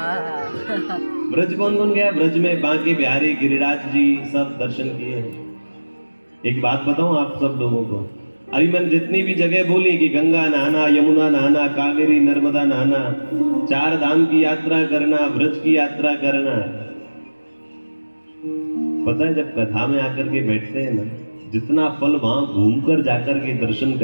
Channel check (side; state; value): both; inverted; correlation -1.00